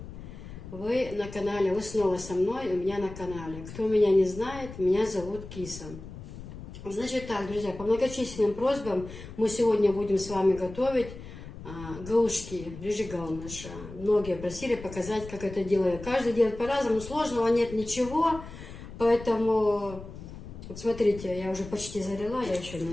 Вы на канале, вы снова со мной, у меня на канале. Кто меня не знает, меня зовут Киса. Значит так, друзья, по многочисленным просьбам мы сегодня будем с вами готовить галушки, рыжигалныша. Многие просили показать, как это делаю. Каждый делает по-разному, сложного нет ничего, поэтому, вот смотрите, я уже почти залила, я еще,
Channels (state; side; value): noise; left; rumble, 13 dB below the sound